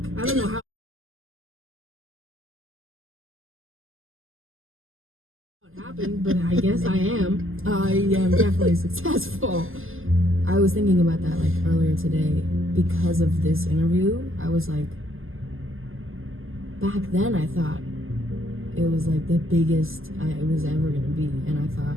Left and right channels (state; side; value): late; left; 0.59 ms